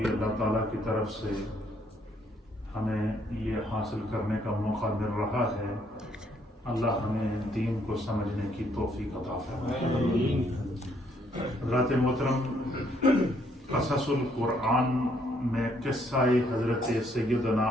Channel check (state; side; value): normal; both; correlation 0.69